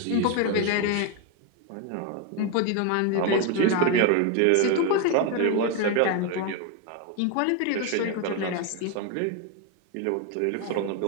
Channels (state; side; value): different; both; correlation 0.02